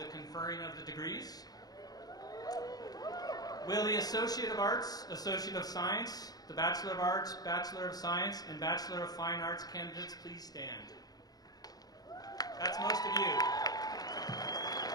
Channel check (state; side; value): late; right; 0.19 ms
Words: conferring of the degrees. Will the Associate of Arts, Associate of Science, the Bachelor of Arts, Bachelor of Science, and Bachelor of Fine Arts candidates please stand? That's most of you.